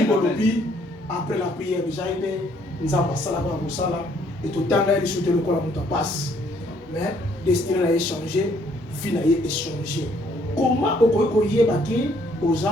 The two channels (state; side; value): normal; both; correlation 0.65